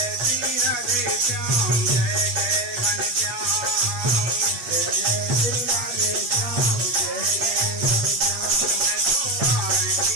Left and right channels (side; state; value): left; late; 8.7 ms